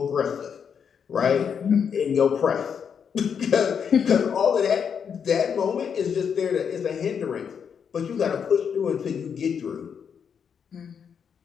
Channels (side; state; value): right; quieter; 7.2 dB